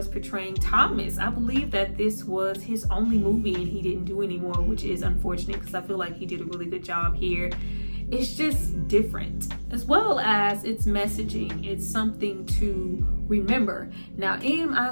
portraying Thomas, I believe that this was his only movie and he didn't do anymore, which is unfortunate because I feel like he did a really good job here. It's just different, as well as its messaging. It's something to remember. Now, am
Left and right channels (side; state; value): both; inverted; correlation -1.00